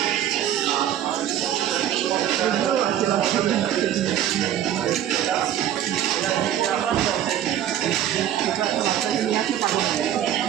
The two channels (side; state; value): left; quieter; 11.1 dB